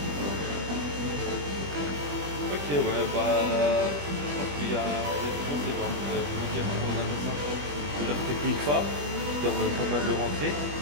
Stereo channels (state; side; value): late; left; 21 ms